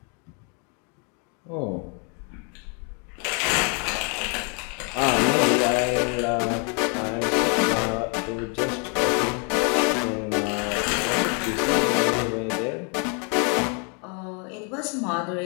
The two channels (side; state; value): right; quieter; 36.9 dB